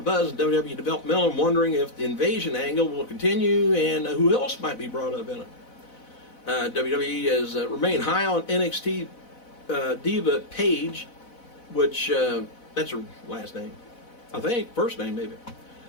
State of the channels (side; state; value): right; late; 4.0 ms